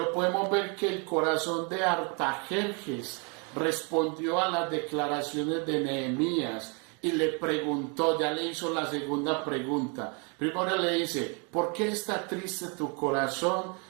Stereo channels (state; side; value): quieter; left; 34.9 dB